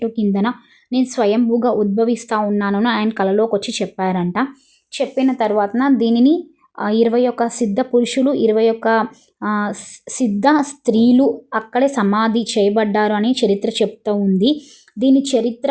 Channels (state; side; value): identical; both; correlation 1.00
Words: కిందన నేను స్వయంభూగా ఉద్భవిస్తా ఉన్నానని ఆయన కలలోకొచ్చి చెప్పారంట. చెప్పిన తర్వాతన దీనిని 21 సిద్ధ పురుషులు, 21 సిద్ధ స్త్రీలు అక్కడే సమాధి చేయబడ్డారు అని చరిత్ర చెప్తూ ఉంది. దీని చరిత్ర